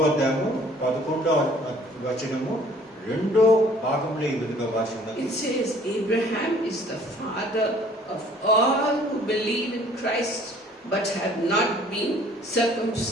అధ్యాయము 11వ వచనము 2వ భాగంలో ఈ విధంగా భాషిస్తున్నది. it says, Abraham is the father of all who believe in Christ but have not been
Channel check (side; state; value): both; normal; correlation 0.55